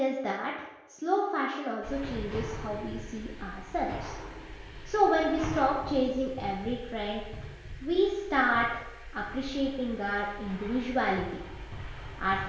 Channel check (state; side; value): identical; both; correlation 1.00